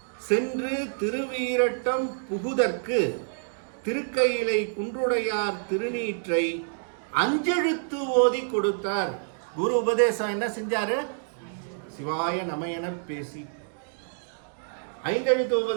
சென்று திருவீரட்டம் புகுதற்கு திருக்கையிலை குன்றுடையார் திருநீற்றை 5 எழுத்து ஓதி கொடுத்தார். குரு உபதேசம் என்ன செஞ்சாரு? சிவாய நமயன பேசி 5 எழுத்து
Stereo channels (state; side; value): silent; left; digital silence